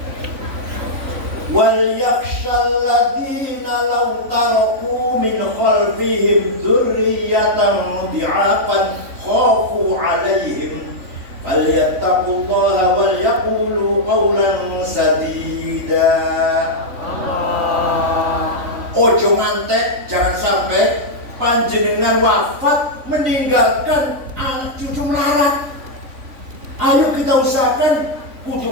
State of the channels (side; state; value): left; late; 3.5 ms